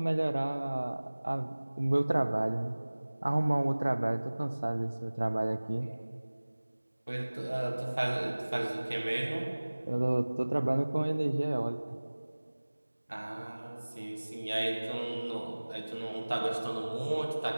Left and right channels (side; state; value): both; inverted; correlation -1.00